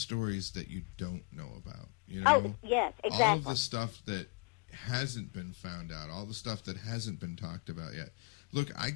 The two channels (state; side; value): quieter; right; 32.1 dB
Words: that you don't know about. You know? Oh, yes, All exactly. of the stuff that hasn't been found out, all the stuff that hasn't been talked about yet. Look,